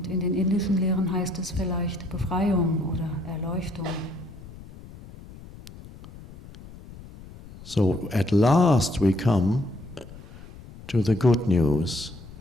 in den indischen Lehren heißt es vielleicht Befreiung oder Erleuchtung. So at last we come to the good news.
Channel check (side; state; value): left; noise; rumble, 17 dB below the sound